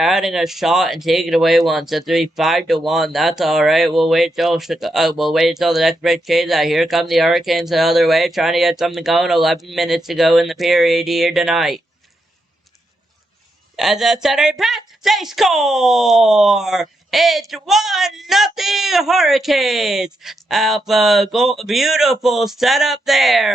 a shot and taking away one, so it's 5-1. That's all right. We'll wait till the next break changes that. Here come the Hurricanes the other way, trying to get something going. 11 minutes to go in the period here tonight. As a center pass, they score! It's 1-0 Hurricanes! Alpha goal, beautiful setup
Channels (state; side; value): normal; both; correlation 0.83